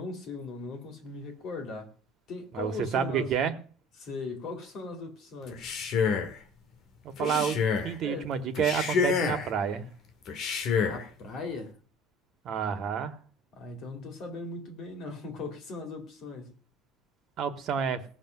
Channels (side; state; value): both; normal; correlation 0.46